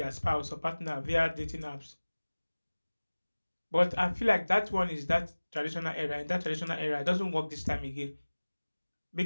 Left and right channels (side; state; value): both; inverted; correlation -1.00